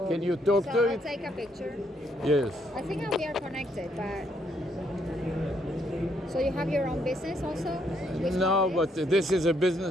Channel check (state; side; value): normal; both; correlation 0.73